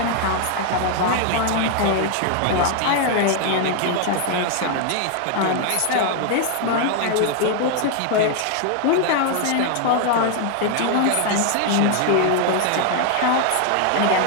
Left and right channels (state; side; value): different; both; correlation 0.00